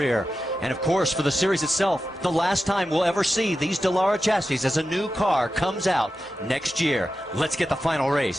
And of course, for the series itself, the last time we'll ever see these Dallara chassis as a new car comes out next year. Let's get the final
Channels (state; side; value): normal; both; correlation 0.91